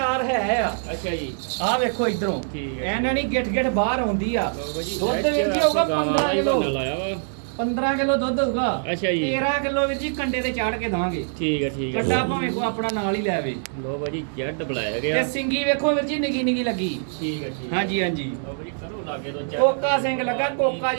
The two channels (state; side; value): silent; left; digital silence